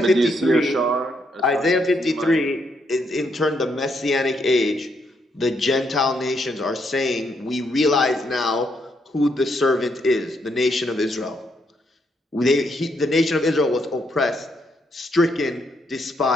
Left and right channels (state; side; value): normal; both; correlation 0.76